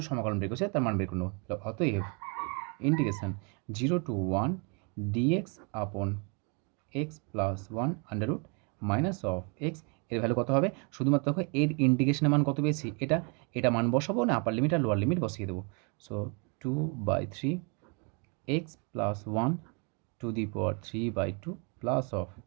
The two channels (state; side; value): quieter; left; 34.7 dB